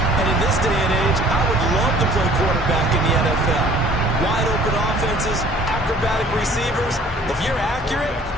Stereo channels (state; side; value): normal; both; correlation 0.54